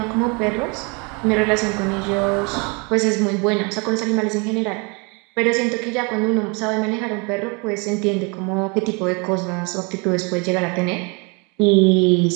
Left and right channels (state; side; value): quieter; left; 31.3 dB